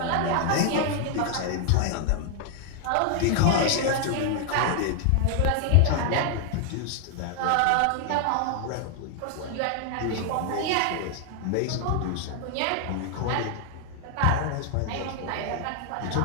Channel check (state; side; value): different; both; correlation 0.00